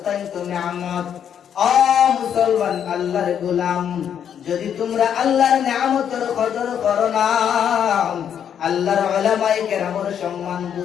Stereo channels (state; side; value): quieter; right; 8.7 dB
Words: নিয়ামত। ও মুসলমান আল্লাহর গোলাম, যদি তোমরা আল্লাহর নিয়ামতের কদর করো না, আল্লাহর উলামায়ে কেরামের সম্মান